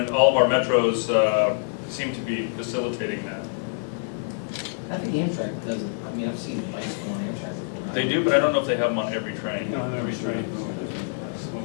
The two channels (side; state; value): right; silent; digital silence